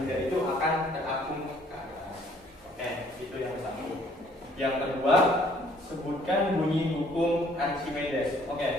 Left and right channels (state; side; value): normal; both; correlation 0.61